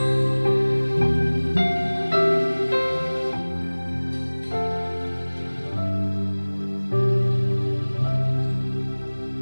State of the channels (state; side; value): inverted; both; correlation -1.00